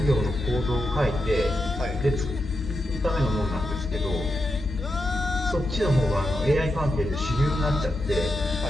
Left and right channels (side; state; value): both; normal; correlation 0.87